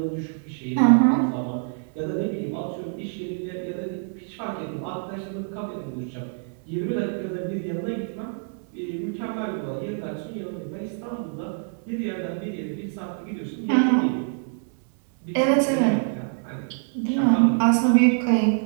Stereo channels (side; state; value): left; silent; 61 dB below the other